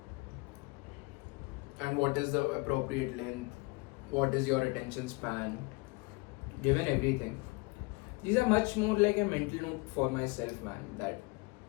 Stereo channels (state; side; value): quieter; right; 26.9 dB